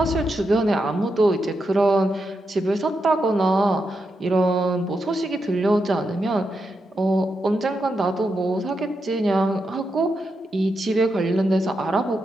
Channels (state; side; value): normal; both; correlation 0.85